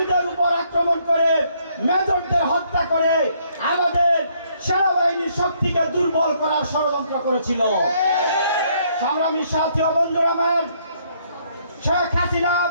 উপর আক্রমণ করে মেজরদের হত্যা করে আমাদের সেনাবাহিনীর শক্তিকে দুর্বল করার ষড়যন্ত্র করেছিল। সংগ্রামী সাথী ও বন্ধুরা আমার, শেখ হাসিনা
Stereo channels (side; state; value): both; inverted; correlation -0.68